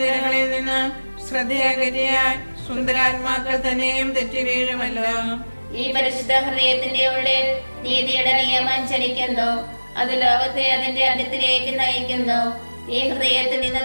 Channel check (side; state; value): both; inverted; correlation -1.00